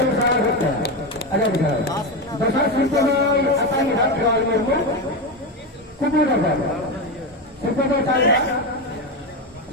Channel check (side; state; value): both; normal; correlation 0.15